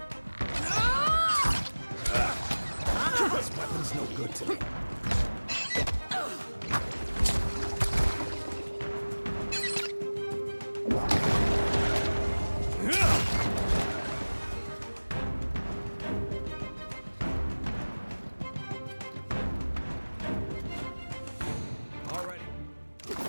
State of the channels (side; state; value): both; inverted; correlation -1.00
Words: This weapon's no good to me.